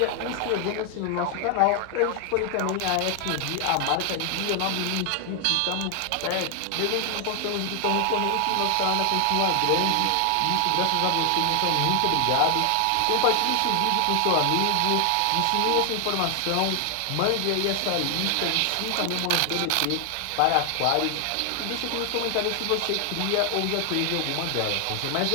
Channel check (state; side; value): different; both; correlation 0.00